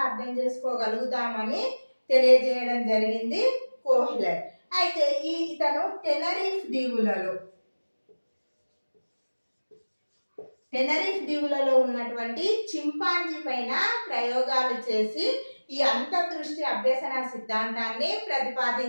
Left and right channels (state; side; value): inverted; both; correlation -1.00